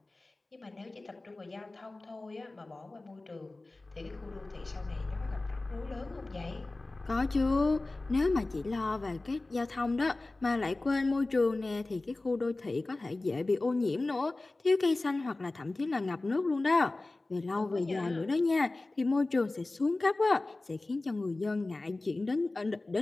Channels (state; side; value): quieter; right; 3.0 dB